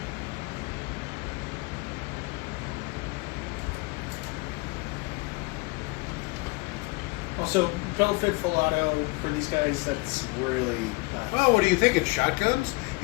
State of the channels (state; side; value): quieter; right; 26.1 dB